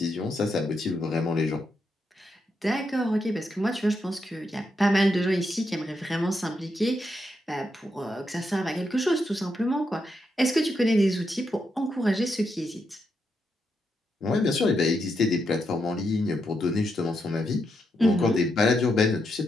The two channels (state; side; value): normal; both; correlation 0.82